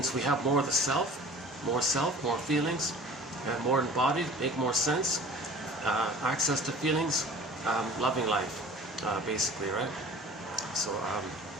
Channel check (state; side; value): normal; both; correlation 0.45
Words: we have more of the self, more feelings, more embodied, make more sense, access to feelings, loving life, basically, right?